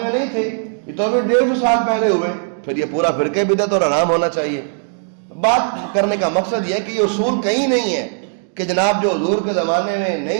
میں نہیں تھے، یہ تو ابھی 150 سال پہلے ہوئے، پھر یہ پورا فرقہ بدعت اور حرام ہونا چاہیے۔ بات کرنے کا مقصد یہ ہے کہ یہ اصول کہیں نہیں ہے کہ جناب جو حضور کے زمانے میں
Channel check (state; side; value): silent; left; digital silence